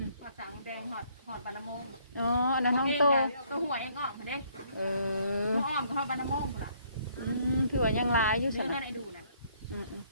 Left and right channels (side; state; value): both; inverted; correlation -0.65